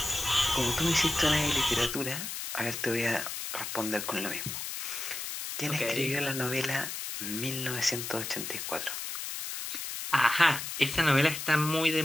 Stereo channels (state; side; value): noise; left; hiss, 6 dB below the sound